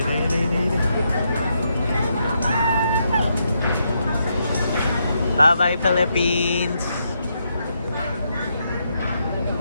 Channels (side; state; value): both; inverted; correlation -0.80